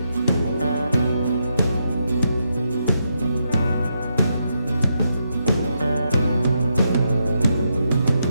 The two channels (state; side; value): inverted; both; correlation -0.82